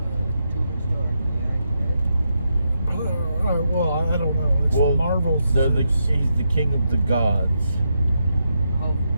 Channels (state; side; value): inverted; both; correlation -0.83